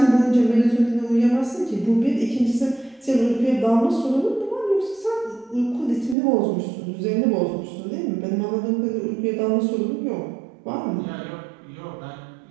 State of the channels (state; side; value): drops out; left; at 6.2 s